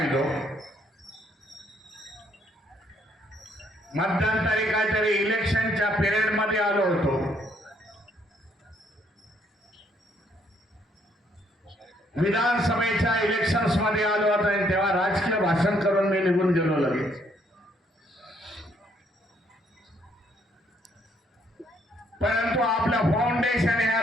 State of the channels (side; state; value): both; normal; correlation 0.69